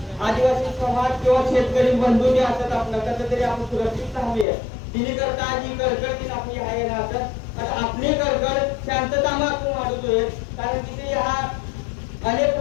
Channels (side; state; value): right; drops out; at 4.5 s